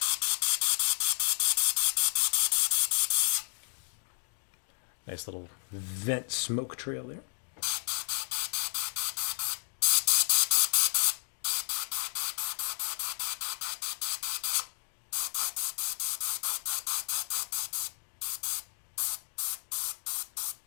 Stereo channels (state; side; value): silent; right; 57 dB below the other